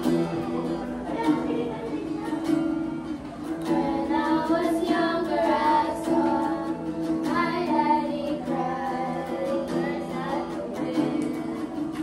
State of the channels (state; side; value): identical; both; correlation 1.00